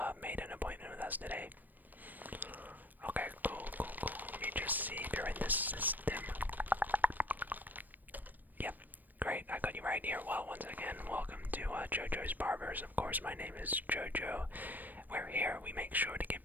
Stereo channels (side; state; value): left; late; 0.087 ms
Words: made an appointment with us today? Okay, cool, cool, cool. Let me just see if you're in this system. Yep, great. I got you right here. Well, once again, welcome to JoJo's Barbers. Of course, my name is JoJo. We're here. We make sure to give